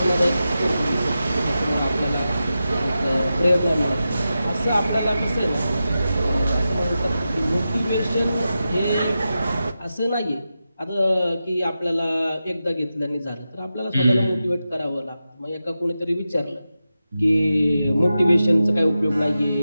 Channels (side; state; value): both; inverted; correlation -0.91